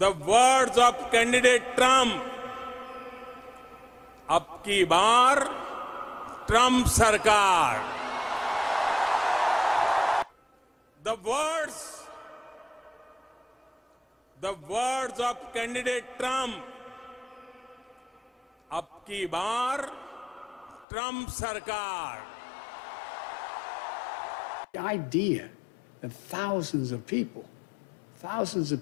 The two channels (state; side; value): drops out; right; at 20.9 s